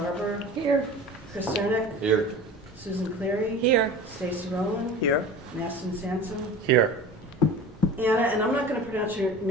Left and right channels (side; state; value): both; normal; correlation 0.37